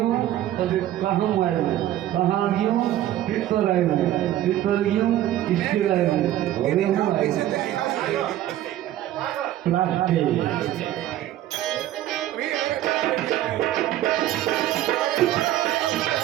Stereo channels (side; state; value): left; quieter; 13.2 dB